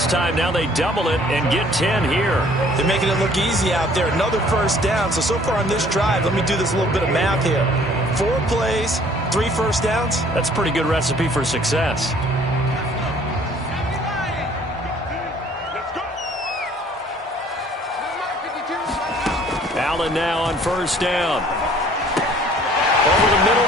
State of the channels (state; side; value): normal; both; correlation 0.56